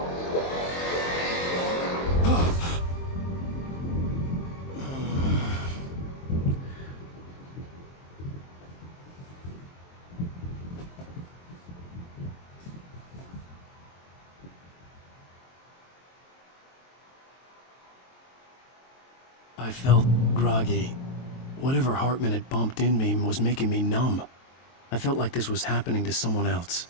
I felt groggy. Whatever Hartman had bumped in me was making me numb. I felt like this was happening to someone else.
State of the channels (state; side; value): late; right; 23 ms